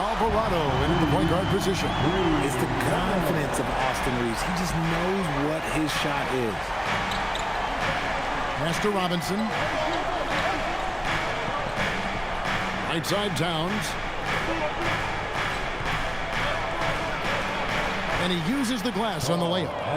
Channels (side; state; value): both; identical; correlation 1.00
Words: in the point guard position. It's the confidence of Austin Reeves. He just knows what his shot is. Pass to Robinson. Right side Towns. And he uses the glass on the